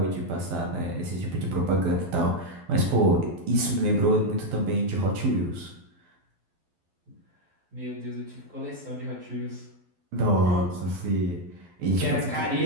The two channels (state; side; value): late; left; 12 ms